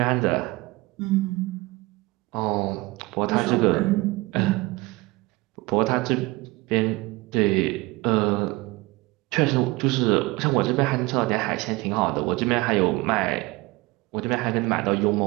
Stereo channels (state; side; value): quieter; left; 22.5 dB